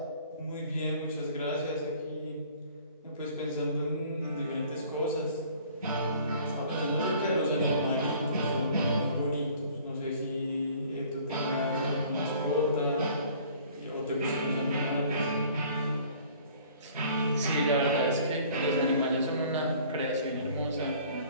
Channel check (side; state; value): both; inverted; correlation -0.52